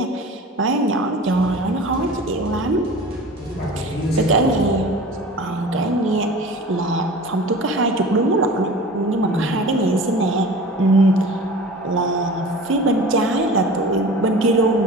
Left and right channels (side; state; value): both; normal; correlation 0.39